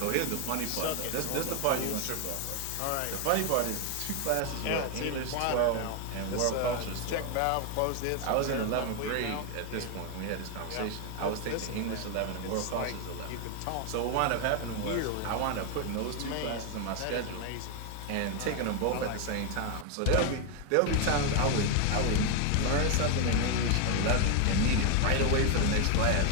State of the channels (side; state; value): both; different; correlation 0.01